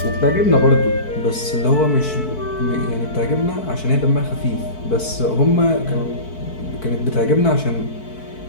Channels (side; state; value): right; late; 4.6 ms